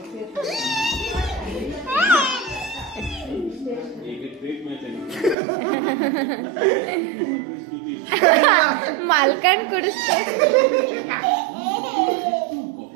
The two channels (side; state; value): left; drops out; at 5.4 s